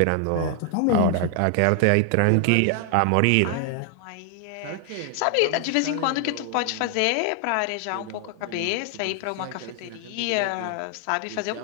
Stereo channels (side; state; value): both; different; correlation 0.00